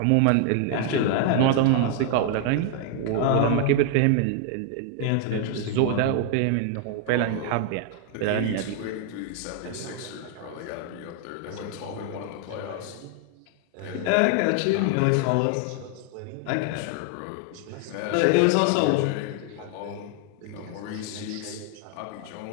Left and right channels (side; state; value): both; different; correlation 0.00